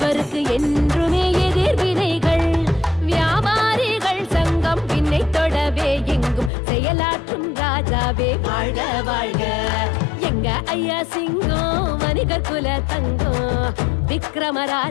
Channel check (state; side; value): drops out; right; at 6.5 s